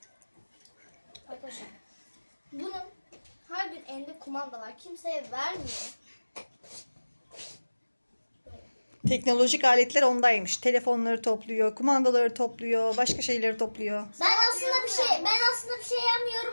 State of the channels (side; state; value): both; inverted; correlation -1.00